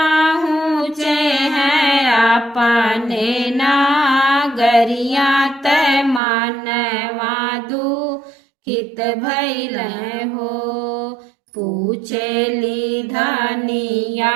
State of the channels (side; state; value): left; drops out; at 6.2 s